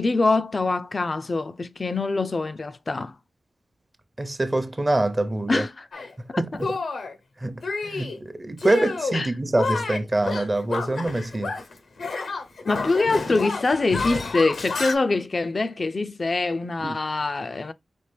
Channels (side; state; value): both; normal; correlation 0.94